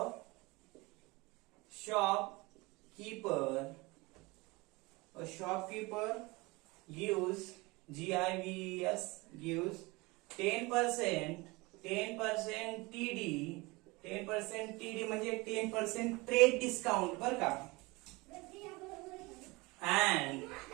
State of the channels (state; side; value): quieter; left; 24.1 dB